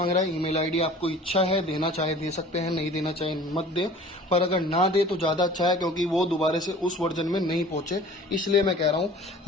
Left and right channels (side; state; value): both; normal; correlation 0.45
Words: रहा है। ईमेल आईडी आपको इच्छा है देना चाहे दे सकते हैं, नहीं देना चाहे मत दे, पर अगर ना दे तो ज़्यादा अच्छा है, क्योंकि वो दोबारा से उस वर्जन में नहीं पहुंचे, इसलिए मैं कह रहा हूँ।